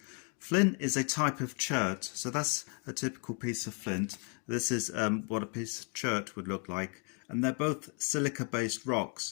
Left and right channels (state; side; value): quieter; right; 37.7 dB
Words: Flint is a type of chert, so that's a typical piece of flint. This is what a piece of chert would look like, and they're both silica-based